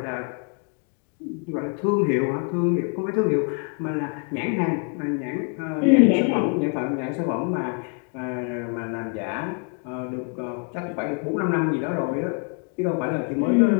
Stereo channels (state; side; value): quieter; right; 37.9 dB